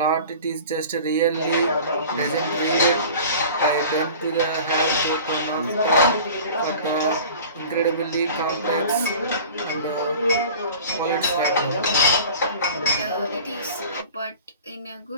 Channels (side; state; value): both; inverted; correlation -0.41